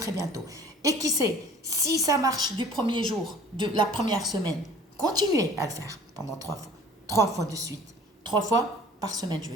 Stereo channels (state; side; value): normal; both; correlation 0.49